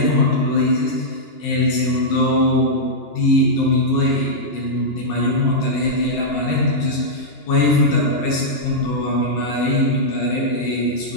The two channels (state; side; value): late; right; 2.9 ms